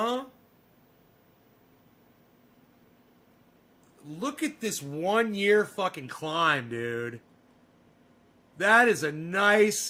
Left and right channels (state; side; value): identical; both; correlation 1.00